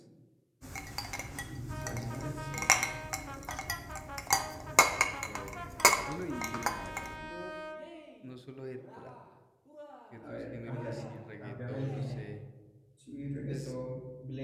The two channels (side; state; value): both; identical; correlation 1.00